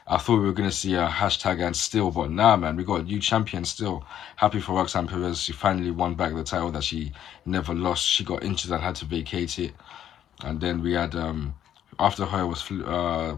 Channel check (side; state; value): right; quieter; 10.6 dB